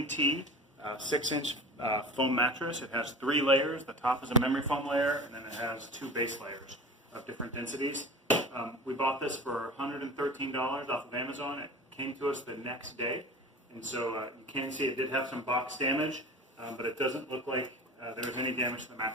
tea 6-inch foam mattress. It has 3 layers. The top is a memory foam layer, and then it has 2 base layers of different densities. We bought this for $113 off of Amazon. It came to us the next day, and so you can see it did have some box damage, but it doesn't look like there was any damage to the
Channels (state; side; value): normal; both; correlation 0.35